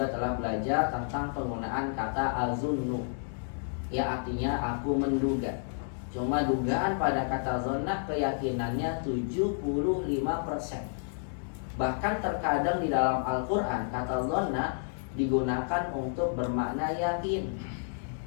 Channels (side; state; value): right; silent; digital silence